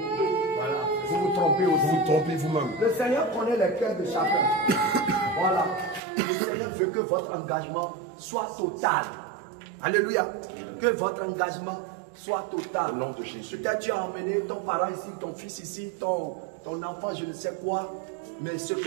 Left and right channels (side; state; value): left; drops out; at 6.0 s